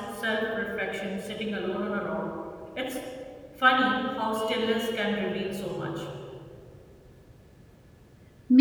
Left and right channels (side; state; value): both; identical; correlation 1.00